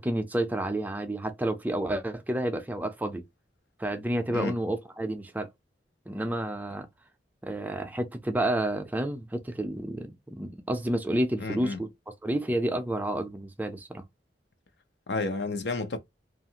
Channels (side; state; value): both; normal; correlation 0.78